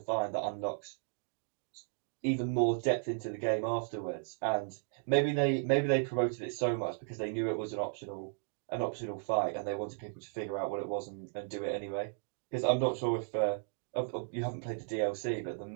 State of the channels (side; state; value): left; silent; digital silence